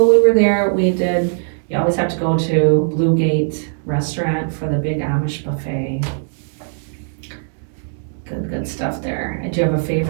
we were there, you always have to go to Blue Gate Restaurant for the big Amish buffet. Good stuff there. Do you have a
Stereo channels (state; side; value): silent; left; digital silence